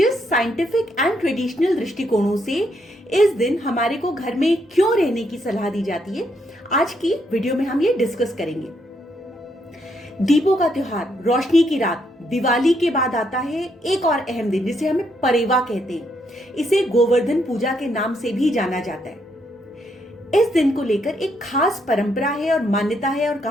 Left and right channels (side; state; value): both; normal; correlation 0.75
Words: साइंटिफिक एंड ट्रेडिशनल दृष्टिकोणों से इस दिन हमारे को घर में क्यों रहने की सलाह दी जाती है, आज की वीडियो में हम ये डिस्कस करेंगे। दीपों का त्योहार, रोशनी की रात, दिवाली के बाद आता है एक और अहम दिन जिसे हमें परेवा कहते हैं। इसे गोवर्धन पूजा के नाम से भी जाना जाता है। इस दिन को लेकर एक खास परंपरा है और मान्यता है और